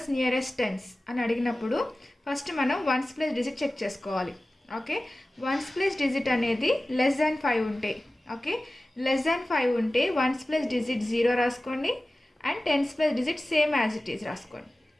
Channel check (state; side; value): normal; both; correlation 0.96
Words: nearest tens అని అడిగినప్పుడు ఫస్ట్ మనం వన్స్ ప్లేస్ డిజిట్ చెక్ చేసుకోవాలి. ఓకే, వన్స్ ప్లేస్ డిజిట్ అనేది లెస్ దాన్ 5 ఉంటే, ఓకే, లెస్ దాన్ 5 ఉంటే వన్స్ ప్లేస్ డిజిట్ 0 రాసుకోండి and tens place digit same as it is రాసుకోండి.